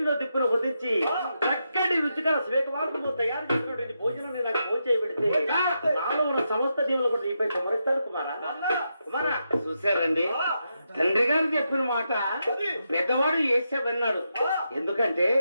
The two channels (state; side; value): inverted; both; correlation -0.84